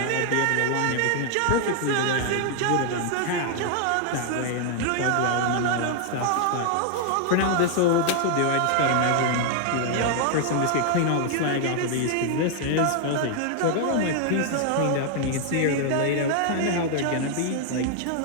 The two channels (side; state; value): both; different; correlation 0.00